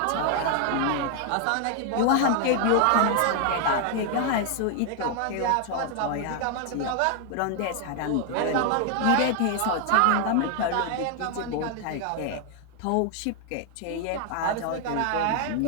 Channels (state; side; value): different; both; correlation 0.00